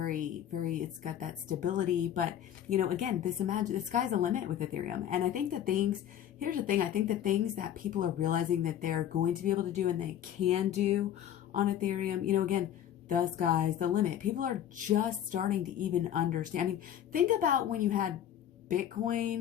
it's got that stability. But, you know, again, the sky's the limit with Ethereum. And I think that here's the thing, I think the things that people are realizing that they're going to be able to do and they can do on Ethereum, you know, again, the sky's the limit. People are just starting to even understand. I mean, think about when you had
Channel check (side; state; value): right; quieter; 10.6 dB